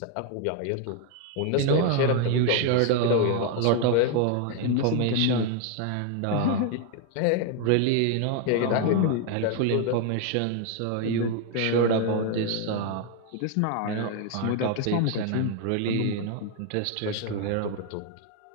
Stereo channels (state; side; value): different; both; correlation 0.01